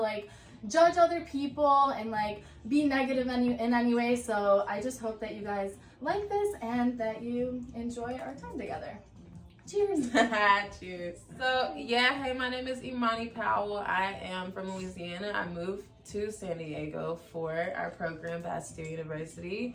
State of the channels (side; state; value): both; identical; correlation 1.00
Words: judge other people and like be negative in any way. So I just hope that you guys like this and that you enjoy our time together. Cheers. Cheers. So yeah, hey, my name is Imani Powell. I am from Louisiana. I moved to San Diego for our program, Bastyr